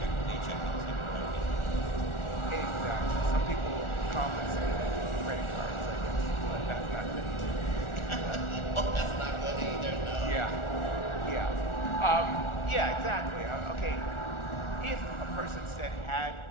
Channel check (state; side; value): late; right; 1.4 ms